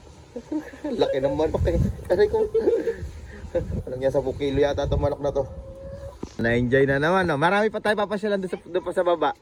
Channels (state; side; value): identical; both; correlation 1.00